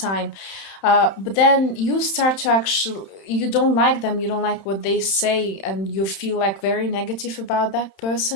time, but then you start to actually, you don't like them, you don't like what they say, and you feel like very negative about that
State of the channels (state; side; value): late; right; 31 ms